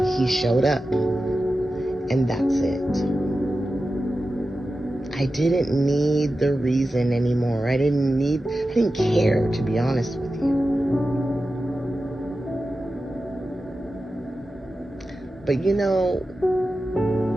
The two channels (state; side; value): normal; both; correlation 0.93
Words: he showed up, and that's it. I didn't need the reason anymore. I didn't care, to be honest with you. But